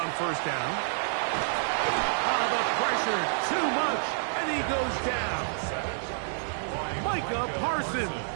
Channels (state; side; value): silent; left; 59 dB below the other